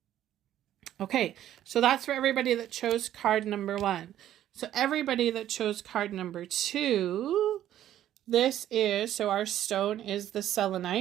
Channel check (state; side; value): quieter; left; 12.0 dB